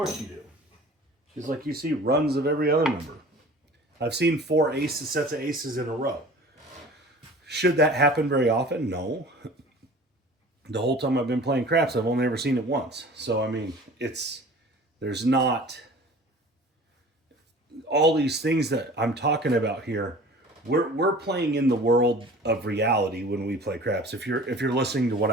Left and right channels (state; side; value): normal; both; correlation 0.43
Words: you do. Just like you see runs of every other number. I've seen 4 aces, sets of aces in a row. Should that happen very often? No. The whole time I've been playing craps, I've only ever seen it once. So, I mean, there's not all these things that I'm talking about here. We're playing in the world of reality when we play craps. If you're listening to what